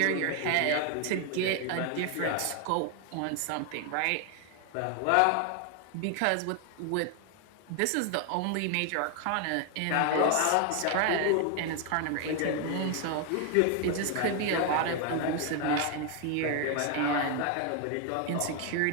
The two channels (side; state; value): both; different; correlation 0.00